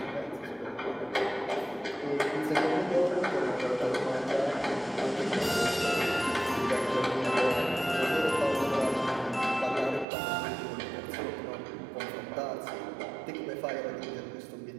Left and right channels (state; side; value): drops out; left; at 10.1 s